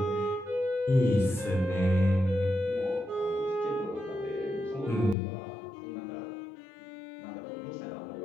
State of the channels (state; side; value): drops out; right; at 5.2 s